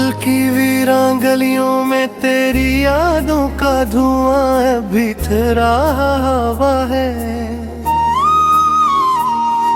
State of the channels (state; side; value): identical; both; correlation 1.00